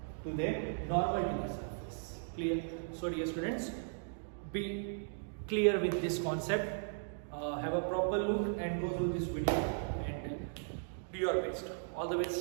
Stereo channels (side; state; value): left; silent; digital silence